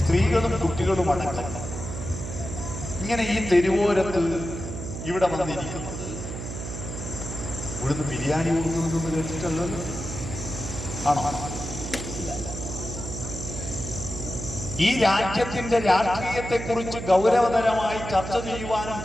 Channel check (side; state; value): right; noise; hum, 7 dB below the sound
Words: സ്ത്രീകളും കുട്ടികളും അടക്കം ഇങ്ങനെ ഈ തെരുവോരത്ത് ഇവിടെ വന്നിരിക്കുന്നത് ഇവിടുന്ന് ബിരിയാണി കൊടുക്കുന്നതെന്ന് കേട്ടിട്ടല്ലോ. ആണോ? ഈ രാജ്യത്തിന്റെ രാഷ്ട്രീയത്തെക്കുറിച്ച് ഗൗരവതരമായി ചർച്ച ചെയ്യുവാനും